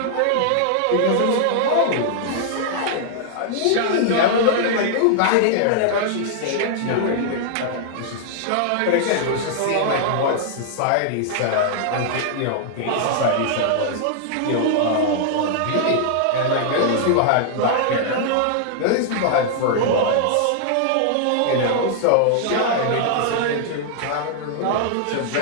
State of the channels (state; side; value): different; both; correlation -0.01